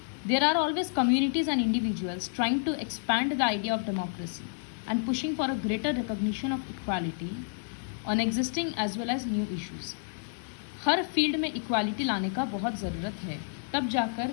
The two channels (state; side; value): silent; right; digital silence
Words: There are always communities and individuals trying to expand the idea of democracy and pushing for a greater recognition of equality on existing as well as new issues. हर फील्ड में इक्वालिटी लाने का बहुत ज़रूरत है, तब जाकर